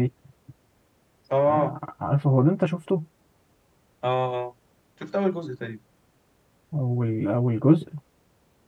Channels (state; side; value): identical; both; correlation 1.00